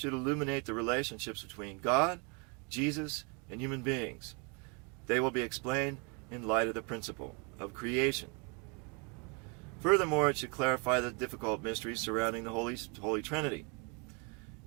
illuminate the relationships between God, Jesus, and human beings. They will be explained in light of the principle of creation. Furthermore, it should clarify the difficult mysteries surrounding the Holy Trinity.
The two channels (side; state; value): left; quieter; 33.3 dB